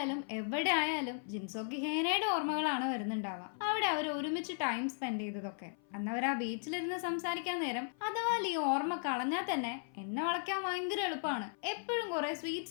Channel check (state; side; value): silent; right; 54 dB below the other